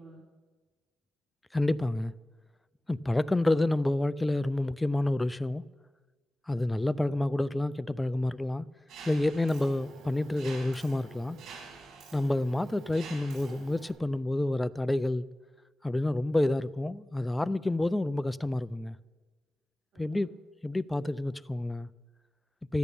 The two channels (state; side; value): normal; both; correlation 0.98